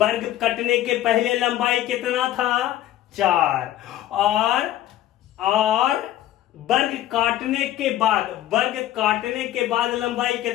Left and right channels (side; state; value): right; quieter; 13.2 dB